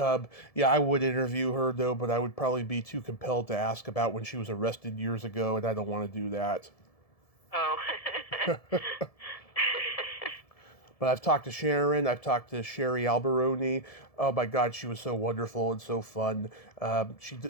would interview her though, but I would probably be too compelled to ask about when she was arrested years ago, and I don't want to do that. Oh. But I've talked to Sharon. I've talked to Sherry Alberoni. Oh my God, she was so wonderful and so fun. She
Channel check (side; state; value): right; late; 1.7 ms